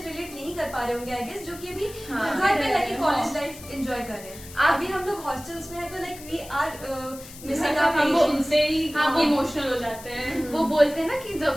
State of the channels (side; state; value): left; noise; hiss, 16 dB below the sound